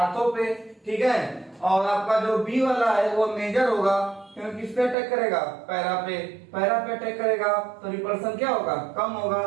पे, ठीक है। और आपका जो बी वाला है वो मेजर होगा, क्योंकि किस पे अटैक करेगा, पैरा पे अटैक करेगा, तो रिपल्सन क्या होगा, कम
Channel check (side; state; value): left; drops out; at 5.0 s